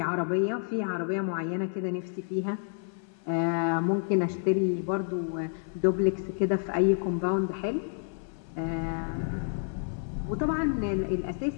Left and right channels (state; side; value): silent; right; 58 dB below the other